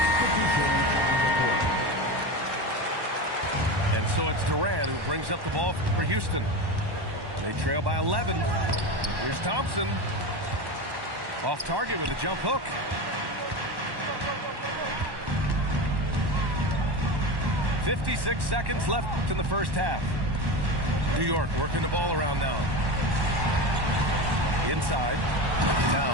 And so it's Durant who brings up the ball for Houston. They trail by 11. Here's Thompson. Off target with a jump hook. "56 seconds left in the first half. New York working the ball around now. Inside.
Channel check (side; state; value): left; late; 1.1 ms